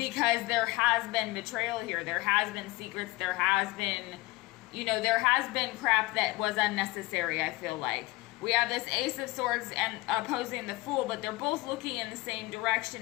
there has been betrayal here. There has been secrets. There has been, there has been crap that was unnecessary, I feel like. We have this Ace of Swords and opposing the Fool, but they're both looking in the same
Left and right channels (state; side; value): quieter; right; 20.9 dB